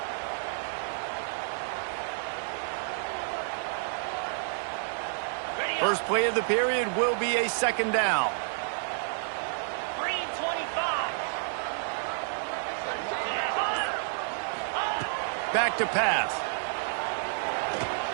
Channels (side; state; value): left; silent; digital silence